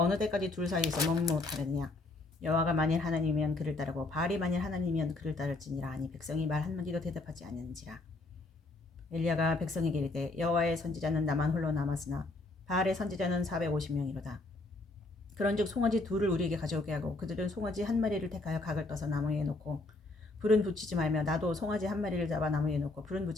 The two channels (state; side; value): quieter; right; 3.1 dB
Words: 때까지 둘 사이에서 머뭇머뭇하느냐. 여호와가 만일 하나님이면 그를 따르고 바알이 만일 하나님이면 그를 따를지니라 하니 백성이 말 한마디도 대답하지 않는지라. 엘리야가 백성에게 이르되 여호와의 선지자는 나만 홀로 남았으나 바알의 선지자는 450명이로다. 그런즉 송아지 둘을 우리에게 가져오게 하고 그들은 송아지 한 마리를 택하여 각을 떠서 나무에 놓고 불은 붙이지 말며 나도 송아지 한 마리를 잡아 나무에 놓고 불은